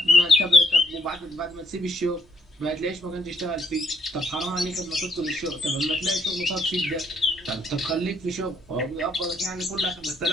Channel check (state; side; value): normal; both; correlation 0.69